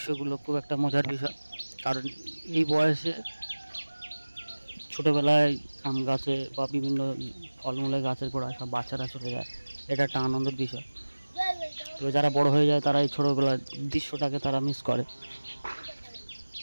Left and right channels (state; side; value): inverted; both; correlation -1.00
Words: খুব একটা মজার বিষয়। কারণ এই বয়সে ছোটোবেলায় আম গাছে বা বিভিন্ন ফলমূলের গাছের গোড়ায় সব বাচ্চারা চলে যায়, এটা একটা আনন্দের বিষয়। তো যারা বড় হয়ে যায় তারা এই ছোটোবেলার দৃশ্যটাকে তারা মিস করে।